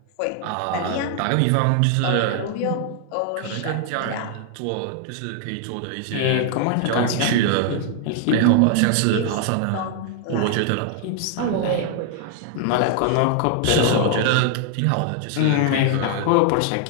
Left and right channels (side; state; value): both; different; correlation 0.00